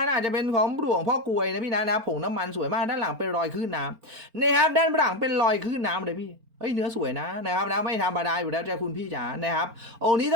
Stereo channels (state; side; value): late; left; 4.4 ms